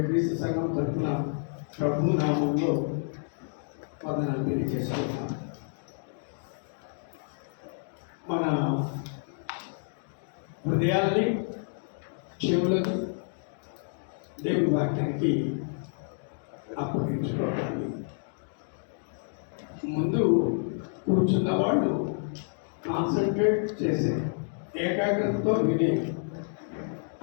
క్రీస్తు సంఘం తరఫున ప్రభు నామంలో వందనాలు తెలియజేస్తున్నాను. మన హృదయాల్ని, చెవులను దేవుని వాక్యానికి అప్పగించుకోవాలి. ముందు కూర్చున్న వాళ్ళు కాన్సన్ట్రేట్ చేసే, ఏకాగ్రతతో వినే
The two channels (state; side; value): silent; right; digital silence